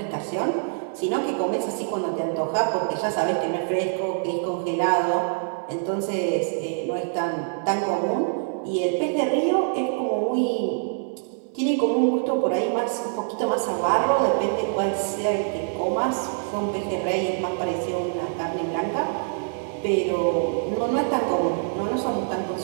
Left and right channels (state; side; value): silent; left; digital silence